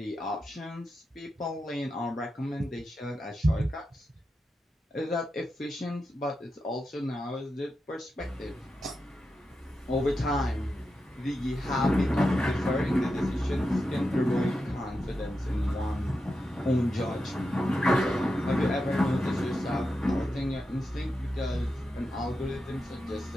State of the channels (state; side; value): normal; both; correlation 0.89